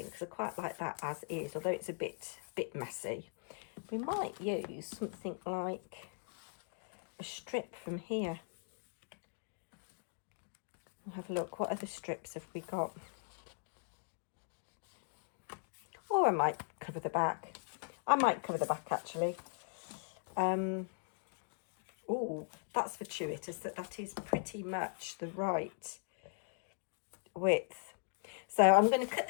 because I quite like that as is, although it's a bit messy. We might use something like a strip from here. We'll have a look. What other strips have we got? Or I might cover the back. I might cover the back actually. Oh, that's fortuitous that is pretty much the right width. So I'm going to cut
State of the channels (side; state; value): right; silent; digital silence